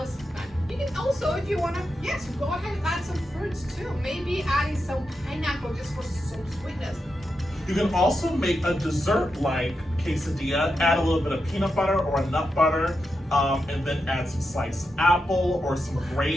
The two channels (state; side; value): normal; both; correlation 0.87